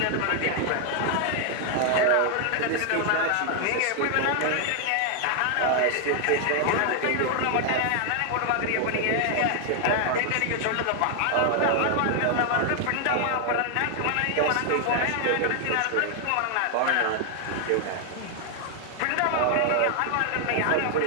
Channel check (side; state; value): both; different; correlation 0.00